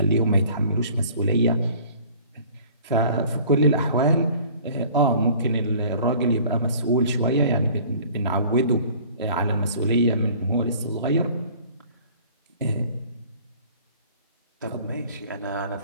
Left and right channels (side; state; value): both; inverted; correlation -0.50